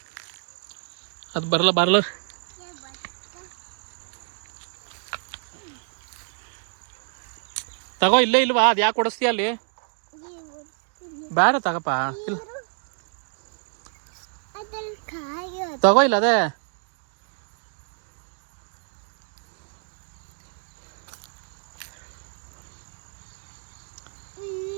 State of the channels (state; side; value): silent; left; 58 dB below the other